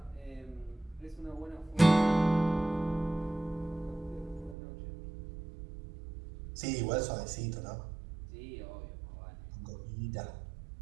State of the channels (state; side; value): drops out; left; at 4.5 s